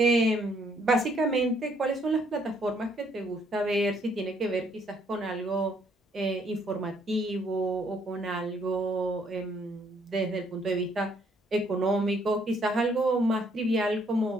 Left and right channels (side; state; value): both; normal; correlation 0.67